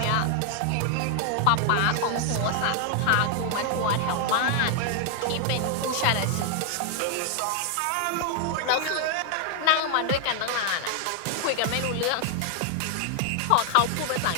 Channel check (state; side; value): different; both; correlation 0.00